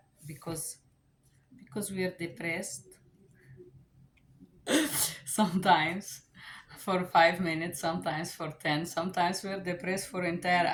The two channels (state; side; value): identical; both; correlation 1.00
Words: because we are depressed sometimes for 5 minutes, sometimes for 10, sometimes we're depressed for entire